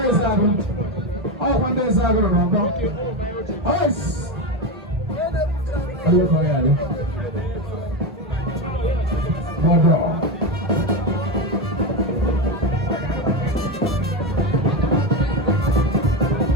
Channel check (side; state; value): both; normal; correlation 0.15